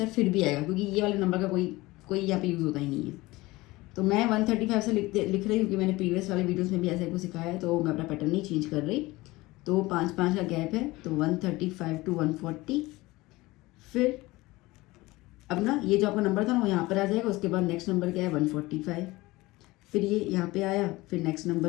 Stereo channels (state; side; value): quieter; right; 20.4 dB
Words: फिर भी आएगा, क्योंकि ये वाले नंबर का कोई यहाँ पे यूज़ होता ही नहीं है। तो मैं 135 से लिख रही हूँ, क्योंकि मैंने प्रीवियस वाले वीडियोस में भी ऐसा कुछ सिखाया है, तो मैं अपना पैटर्न नहीं चेंज कर रही। तो 5 का गैप है, तो 135 to 140। फिर अब ना ये जो आपका नंबर था ना वो यहाँ पर आ जाएगा, उसके बाद नेक्स्ट नंबर क्या है? 145। फिर ये यहाँ पे आया, फिर नेक्स्ट